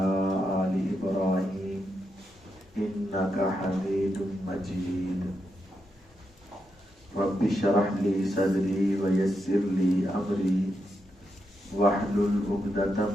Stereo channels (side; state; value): both; normal; correlation 0.84